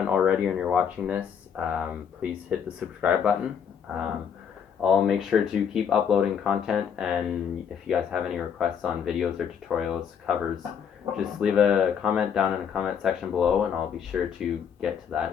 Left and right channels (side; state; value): right; quieter; 7.6 dB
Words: already and you're watching this, please hit the subscribe button. I'll make sure to keep uploading content, and if you guys have any requests on videos or tutorials, covers, just leave a comment down in the comment section below and I'll be sure to get to that